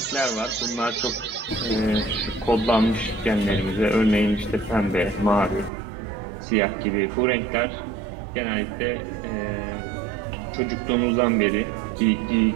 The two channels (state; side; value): drops out; left; at 5.7 s